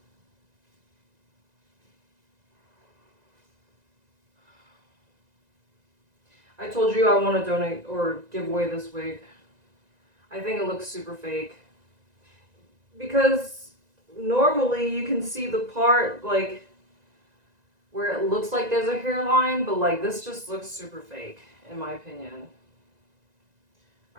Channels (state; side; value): late; left; 1.9 ms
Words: I told you I want to donate or give away this wig. I think it looks super fake. Because normally you can see the part like where it looks like there's a hairline, but like this just looks super fake in my opinion.